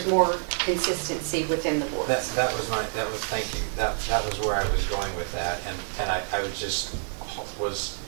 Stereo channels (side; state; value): left; silent; digital silence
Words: more consistency within the board. Thank you. That was where I was going with that, and I was